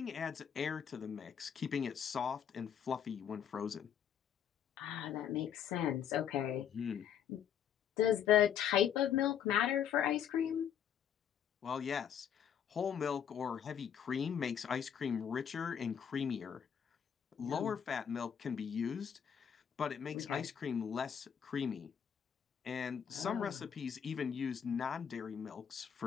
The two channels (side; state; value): right; quieter; 8.5 dB